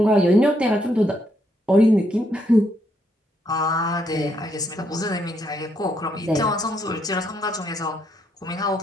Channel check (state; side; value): normal; both; correlation 0.75